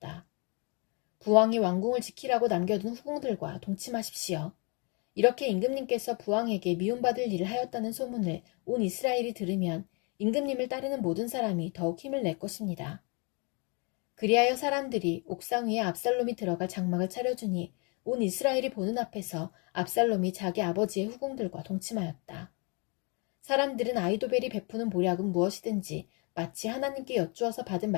부왕이 왕궁을 지키라고 남겨둔 후궁들과 동침하십시오. 이렇게 임금님께서 부왕에게 미움받을 일을 하였다는 소문을 온 이스라엘이 들으면 임금님을 따르는 모든 사람이 더욱 힘을 낼 것입니다. 그리하여 사람들이 옥상 위에 압살롬이 들어갈 장막을 차려주니 온 이스라엘이 보는 앞에서 압살롬이 자기 아버지의 후궁들과 동침하였다. 사람들은 아히도벨이 베푸는 모략은 무엇이든지 마치 하나님께 여쭈어서 받은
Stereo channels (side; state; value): right; quieter; 32.8 dB